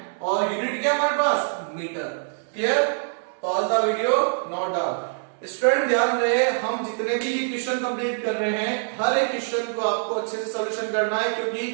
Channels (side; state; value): left; silent; 62 dB below the other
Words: और यूनिट क्या हमारे पास, metre. Clear? Pause the video, note down. Student ध्यान रहे, हम जितने भी ये क्वेश्चन कंप्लीट कर रहे हैं, हर एक क्वेश्चन को आपको अच्छे से सॉल्यूशन करना है, क्योंकि